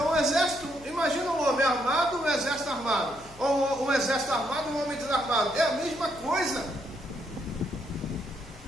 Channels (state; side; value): noise; left; hum, 21 dB below the sound